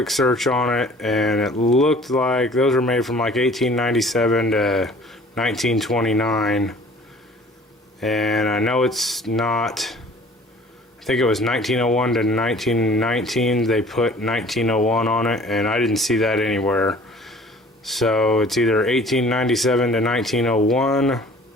search on it, and it looked like those were made from like 1897 to 1929. And I know it's not, I think it was 1901 to 1919. They put 1901 on it, and I didn't see that anywhere. So it's either 1897 to 1901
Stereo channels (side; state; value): both; normal; correlation 0.50